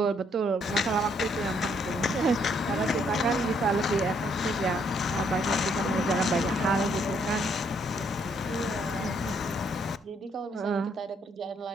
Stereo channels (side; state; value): both; normal; correlation 0.70